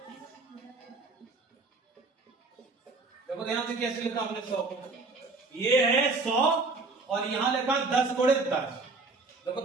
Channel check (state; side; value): quieter; left; 3.7 dB